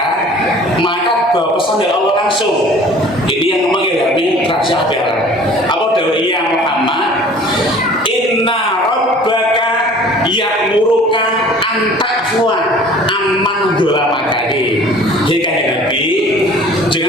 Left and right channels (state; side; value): normal; both; correlation 0.48